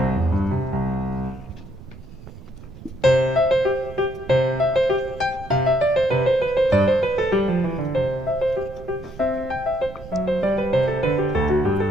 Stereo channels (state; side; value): noise; right; rumble, 17 dB below the sound